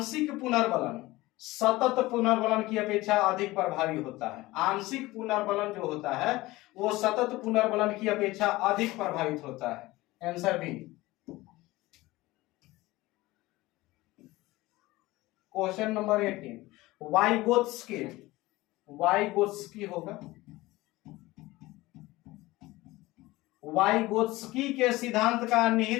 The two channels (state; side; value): quieter; right; 19.4 dB